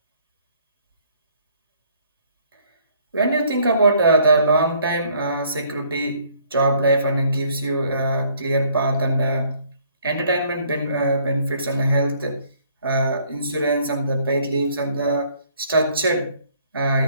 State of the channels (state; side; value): inverted; both; correlation -0.62